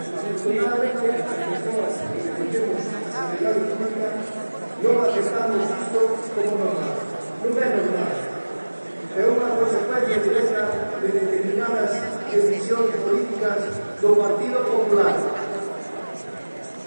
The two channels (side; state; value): both; inverted; correlation -1.00